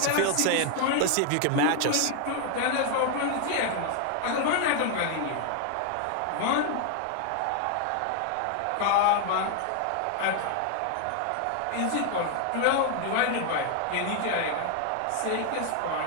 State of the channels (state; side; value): different; both; correlation 0.00